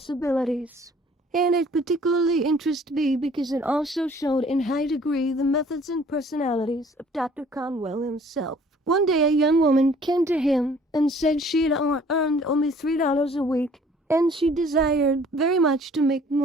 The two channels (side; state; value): both; normal; correlation 0.55